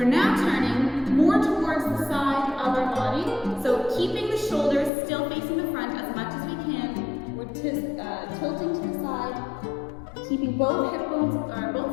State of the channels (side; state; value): right; drops out; at 4.9 s